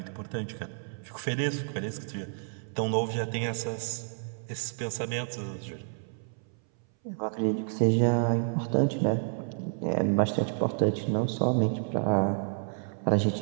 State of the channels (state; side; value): silent; left; 58 dB below the other